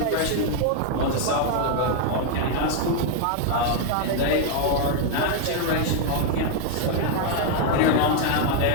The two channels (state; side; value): different; both; correlation 0.00